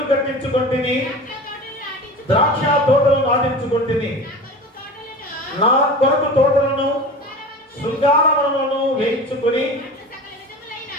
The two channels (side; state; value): both; normal; correlation 0.34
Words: కట్టించుకుంటుని, ద్రాక్ష తోటలు నాటించుకుంటుని, నా కొరకు తోటలను శృంగారములను వేయించుకొని